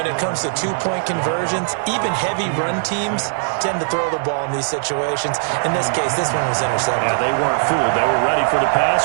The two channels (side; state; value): left; silent; digital silence